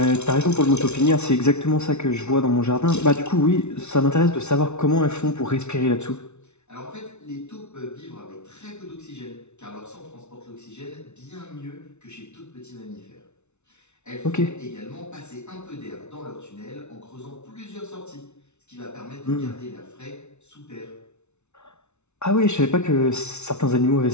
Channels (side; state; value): right; late; 0.82 ms